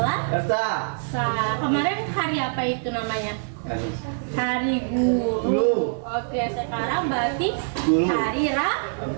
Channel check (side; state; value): left; silent; 61 dB below the other